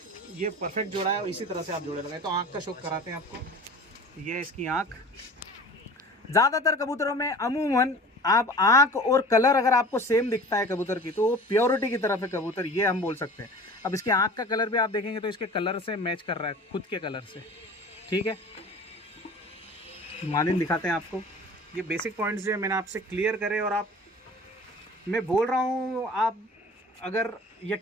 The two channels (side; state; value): both; normal; correlation 0.41